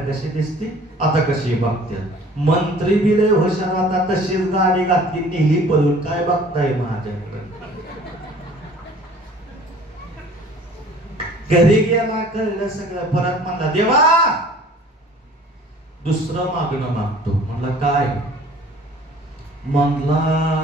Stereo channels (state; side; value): normal; both; correlation 0.50